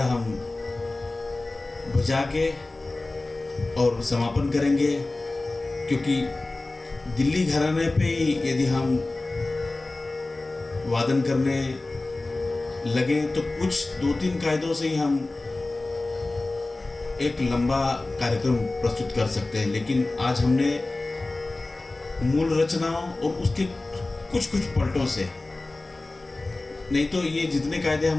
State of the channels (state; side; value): quieter; right; 3.0 dB